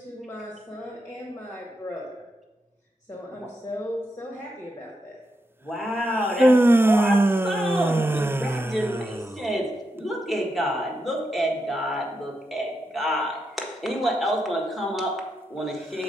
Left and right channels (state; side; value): normal; both; correlation 0.84